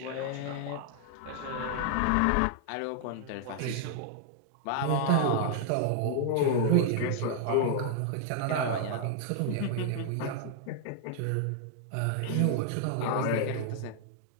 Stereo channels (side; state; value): both; different; correlation 0.00